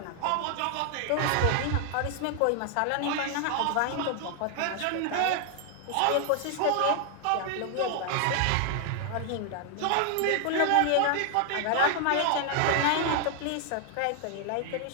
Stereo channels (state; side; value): different; both; correlation 0.00